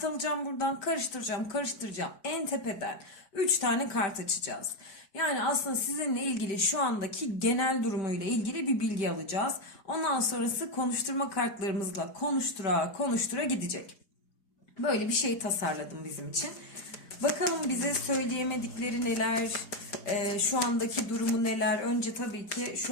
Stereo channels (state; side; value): late; right; 4.8 ms